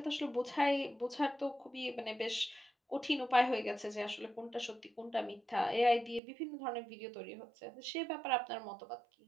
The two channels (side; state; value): left; drops out; at 6.2 s